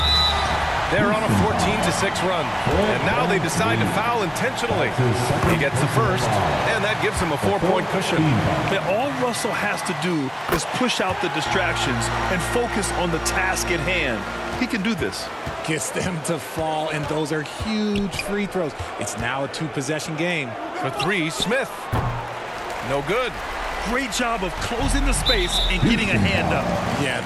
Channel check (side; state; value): both; identical; correlation 1.00